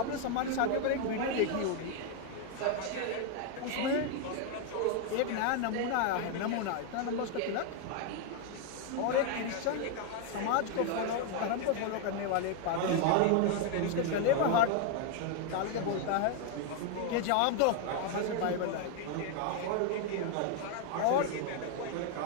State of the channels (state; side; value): different; both; correlation 0.01